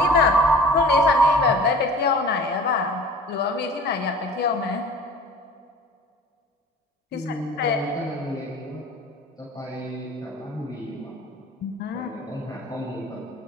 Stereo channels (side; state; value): both; normal; correlation 0.44